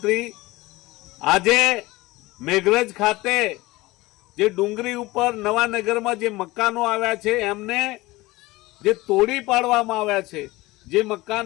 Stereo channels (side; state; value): right; quieter; 20.2 dB